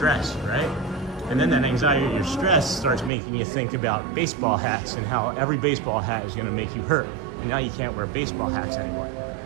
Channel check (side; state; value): left; drops out; at 3.1 s